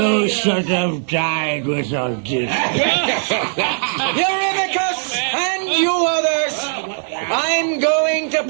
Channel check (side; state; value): left; silent; 67 dB below the other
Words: should have died with Odysseus. Eurymachus and you others! I'm going to